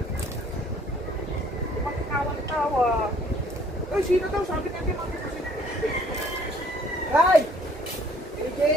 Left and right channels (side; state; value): both; normal; correlation 0.59